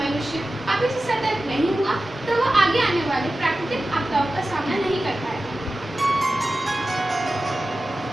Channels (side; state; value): both; normal; correlation 0.95